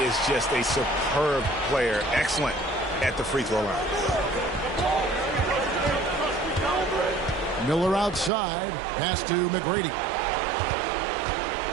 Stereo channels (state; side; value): drops out; left; at 8.3 s